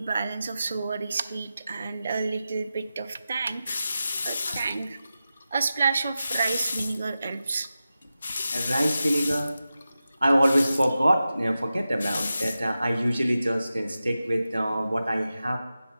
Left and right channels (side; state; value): both; inverted; correlation -0.93